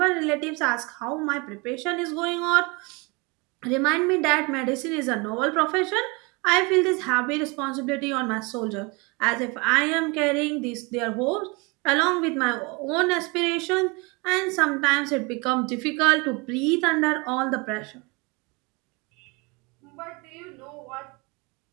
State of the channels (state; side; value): quieter; left; 28.1 dB